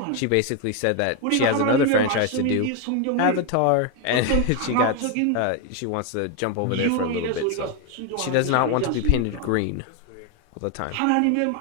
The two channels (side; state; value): both; different; correlation 0.01